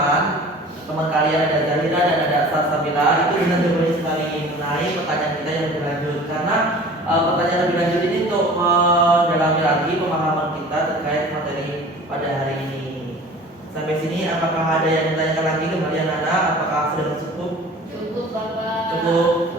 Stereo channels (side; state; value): both; normal; correlation 0.43